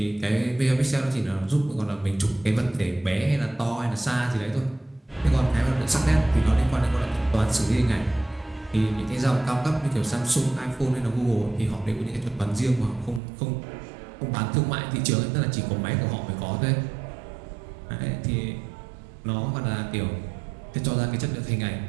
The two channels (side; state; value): left; drops out; at 13.2 s